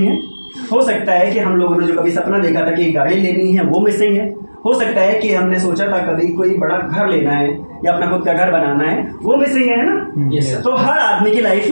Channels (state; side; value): inverted; both; correlation -1.00